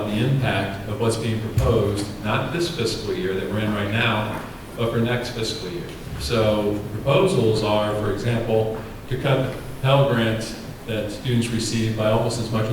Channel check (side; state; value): both; identical; correlation 1.00